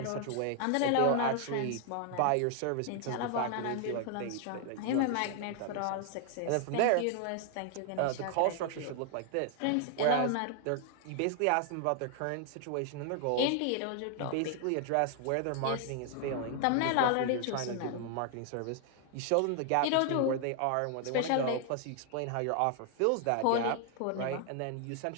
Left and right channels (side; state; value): both; different; correlation 0.00